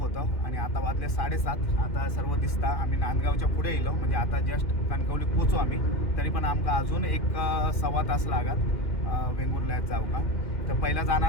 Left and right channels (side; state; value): right; late; 2.6 ms